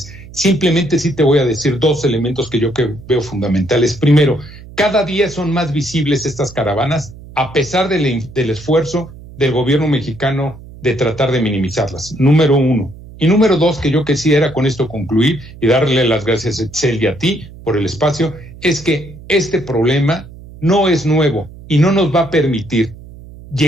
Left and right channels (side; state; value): right; noise; hum, 18 dB below the sound